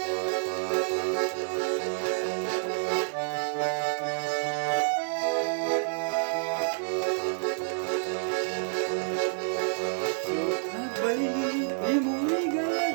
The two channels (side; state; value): left; silent; digital silence